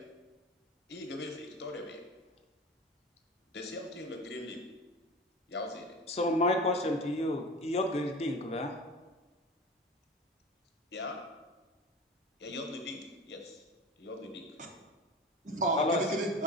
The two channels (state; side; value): normal; both; correlation 0.34